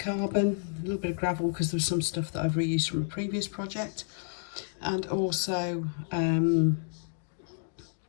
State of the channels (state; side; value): silent; right; digital silence